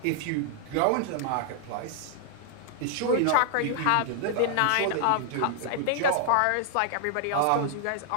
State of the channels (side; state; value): both; different; correlation -0.01